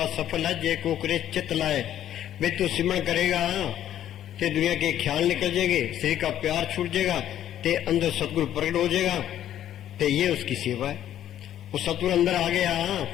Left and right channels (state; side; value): quieter; right; 11.4 dB